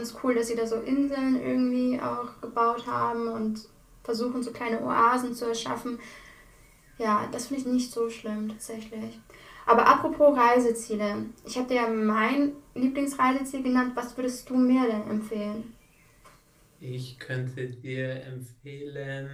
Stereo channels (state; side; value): identical; both; correlation 1.00